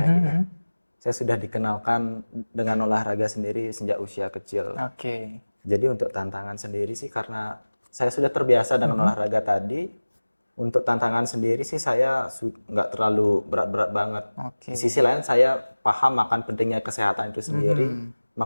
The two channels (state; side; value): inverted; both; correlation -1.00